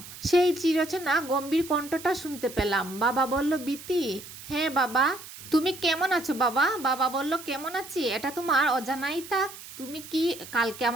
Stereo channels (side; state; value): right; noise; hiss, 15 dB below the sound